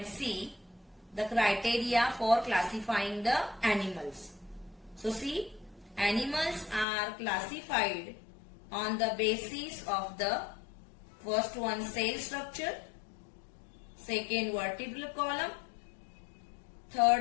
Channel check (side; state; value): right; drops out; at 6.9 s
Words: see the criteria for classifying the animals. So see, animals are classified on the basis of the first one, cell structure, second, vertebral column,